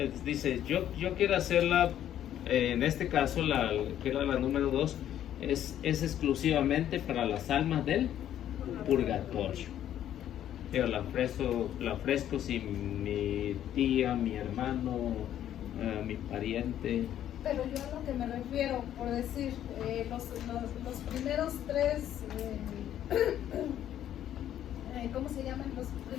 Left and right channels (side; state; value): right; quieter; 11.1 dB